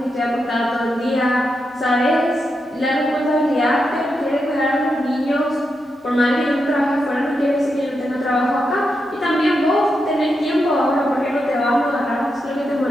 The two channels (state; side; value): normal; both; correlation 0.85